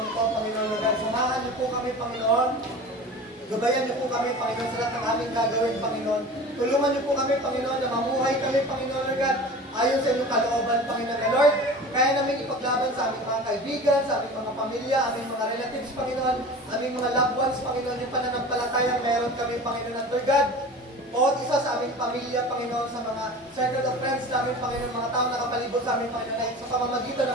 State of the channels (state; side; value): normal; both; correlation 0.37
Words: ito, Panginoon, Lord God, samahan niyo po kami, Panginoon. Gabayan niyo po kami, Panginoon, sa lahat ng aming gagawin, Panginoon. Tulungan niyo po kami, Panginoon, na mamuhay kami, Panginoon, Lord God, ayon sa inyong kalooban, Panginoon, Lord. Kaya namin ipaglaban sa aming mga kaibigan, sa aming mga pamilya, aming mga relatives, Panginoon, aming mga loved ones, Panginoon, yung pananampalatayang meron kami, Panginoon, at Lord God, bawat isa sa aming pamilya, Panginoon, sa mga circle of friends namin, Panginoon, mga tao nakapalibot sa aming, Panginoon, ay sa pamamagitan ng